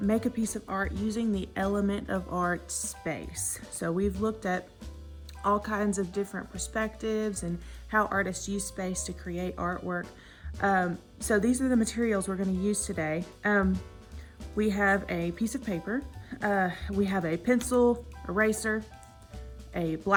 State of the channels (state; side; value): identical; both; correlation 1.00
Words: a piece of art using the element of art space. So we've looked at all kinds of different perspectives and how artists use space to create artwork. So these are the materials we're going to use today. We have a piece of paper, we have a pencil, eraser, a